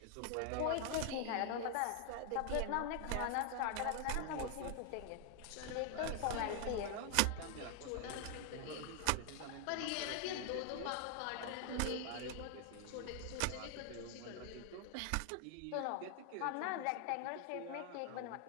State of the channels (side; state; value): both; different; correlation 0.00